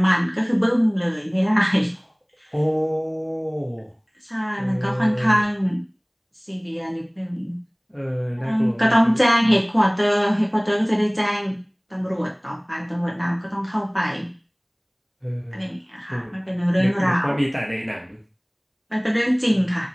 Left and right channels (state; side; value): identical; both; correlation 1.00